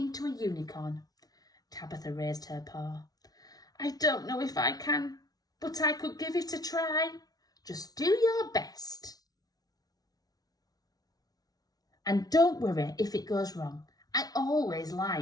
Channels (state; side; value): late; right; 0.18 ms